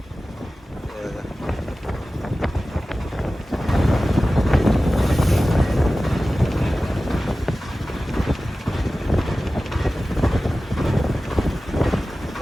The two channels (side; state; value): both; normal; correlation 0.96